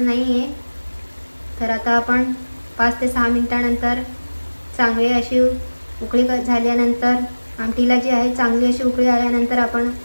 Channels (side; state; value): both; inverted; correlation -1.00